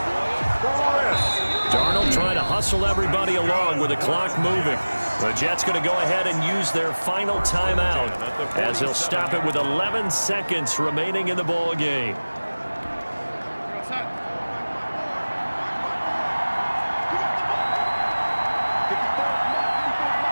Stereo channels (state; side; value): inverted; both; correlation -1.00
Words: Darnold trying to hustle everybody along with the clock moving. The Jets going to go ahead and use their final timeout as they'll stop it with 11 seconds remaining in the ball game.